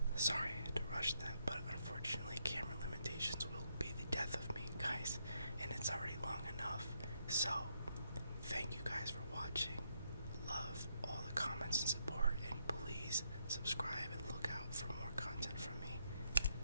Sorry I had to rush that, but unfortunately camera limitations will be the death of me, guys, and it's already long enough. So, thank you guys for watching. Love all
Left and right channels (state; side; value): inverted; both; correlation -0.78